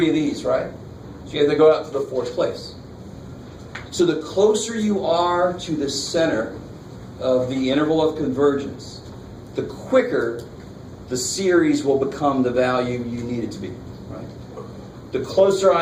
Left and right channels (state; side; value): identical; both; correlation 1.00